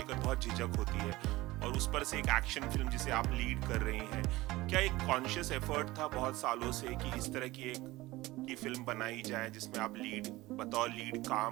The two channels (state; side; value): quieter; left; 19.0 dB